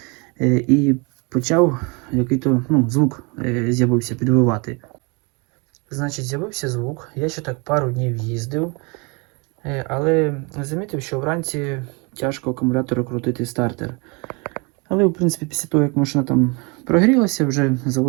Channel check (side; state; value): left; quieter; 30.3 dB